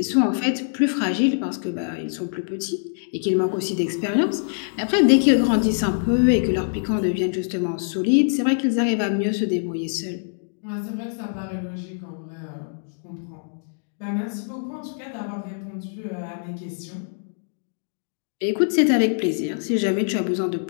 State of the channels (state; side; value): silent; right; digital silence